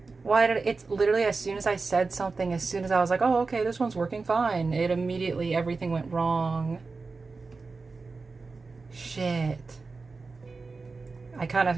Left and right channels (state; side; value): quieter; left; 4.1 dB